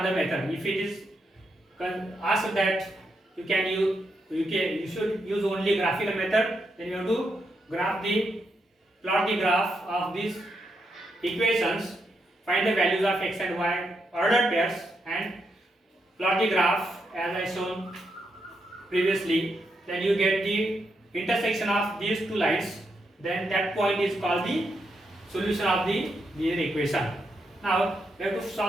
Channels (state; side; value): normal; both; correlation 0.82